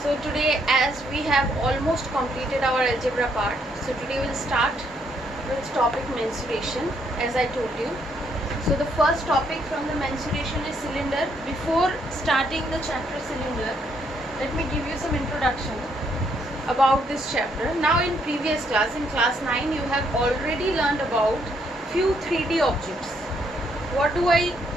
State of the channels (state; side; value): normal; both; correlation 0.72